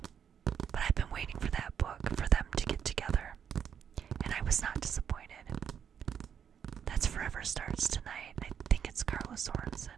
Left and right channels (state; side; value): quieter; left; 8.1 dB